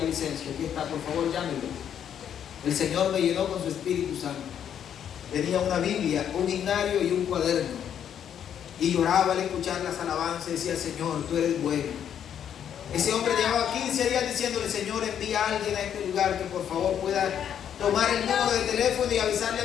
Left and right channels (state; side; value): quieter; right; 9.1 dB